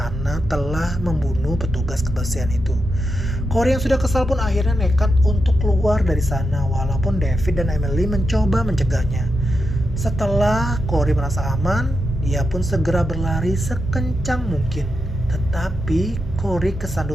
telah membunuh petugas kebersihan itu. Corey yang sudah kesal pun akhirnya nekat untuk keluar dari sana walaupun David dan Emily mencoba mencegahnya. Setelah Corey merasa aman, dia pun segera berlari sekencang mungkin. Tetapi Corey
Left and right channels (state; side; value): normal; both; correlation 0.87